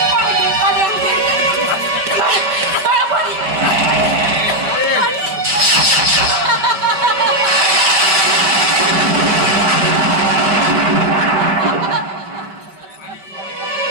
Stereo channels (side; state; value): left; late; 5.3 ms